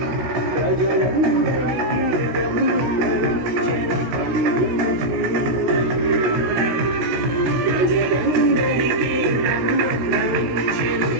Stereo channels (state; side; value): late; left; 16 ms